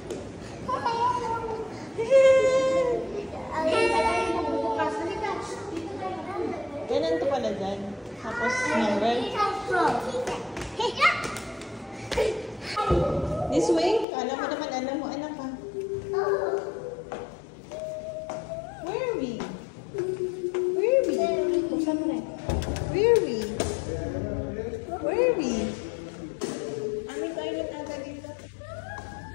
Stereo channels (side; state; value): right; drops out; at 14.1 s